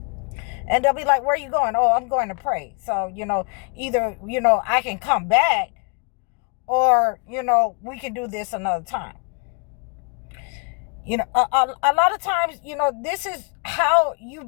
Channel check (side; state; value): right; quieter; 36.4 dB